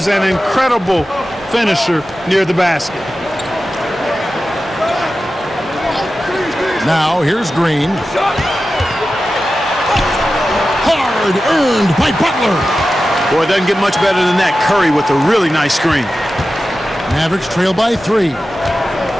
an incredible finisher near the basket. Now here's Green. Hard earned by Butler. Boy, it doesn't get much better than that. Curry with a really nice screen. Mavericks trail by 3.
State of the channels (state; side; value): normal; both; correlation 0.93